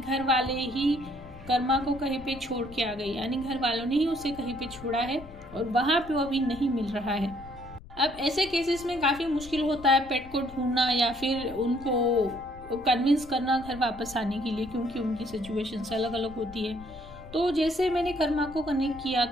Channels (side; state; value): left; noise; rumble, 18 dB below the sound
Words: वाले ही कर्मा को कहीं पे छोड़ के आ गए, यानी घर वालों ने ही उसे कहीं पे छोड़ा है और वहां पे वो अभी नहीं मिल रहा है। अब ऐसे केसेस में काफी मुश्किल होता है पेट को ढूंढना या फिर उनको कन्विंस करना घर वापस आने के लिए, क्योंकि उनकी सिचुएशन अलग अलग होती है। तो जैसे मैंने कर्मा को कनेक्ट किया